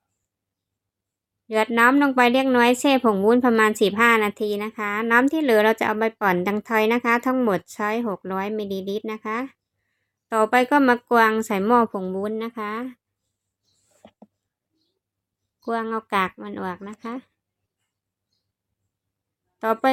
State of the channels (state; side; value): identical; both; correlation 1.00